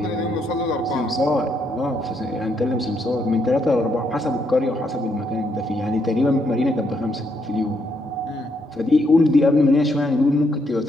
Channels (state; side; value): normal; both; correlation 0.75